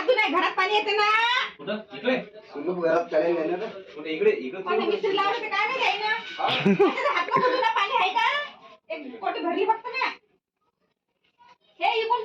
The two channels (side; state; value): both; identical; correlation 1.00